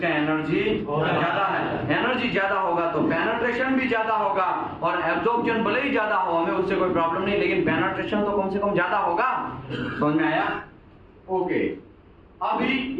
एनर्जी ज्यादा है। एनर्जी ज्यादा होगा तो पेनिट्रेशन भी ज्यादा होगा, और एब्जॉर्प्शन भले ही ज्यादा हो, हमें उससे कोई प्रॉब्लम नहीं, लेकिन पेनिट्रेशन तो कम से कम ज्यादा होगा। समझ में आया? ओके। अभी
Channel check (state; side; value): identical; both; correlation 1.00